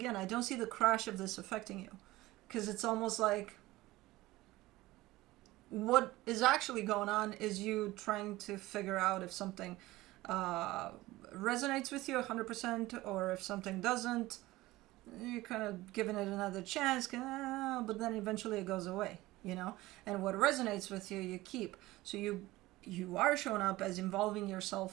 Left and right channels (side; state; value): left; quieter; 18.3 dB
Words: don't see the crash of this affecting you. Because it's almost like what is actually going on is you trying to figure out if something resonates with you 100% or if something doesn't. You're kind of giving it another chance, but then eventually it goes away, you know? And what resonates with you, you keep. So you are showing up as involving